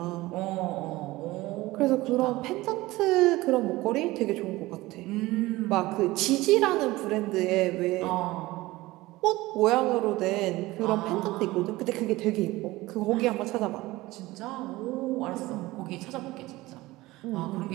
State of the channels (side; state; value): left; quieter; 19.1 dB